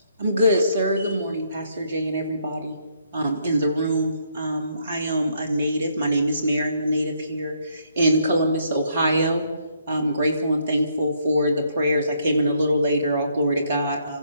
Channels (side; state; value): both; inverted; correlation -0.71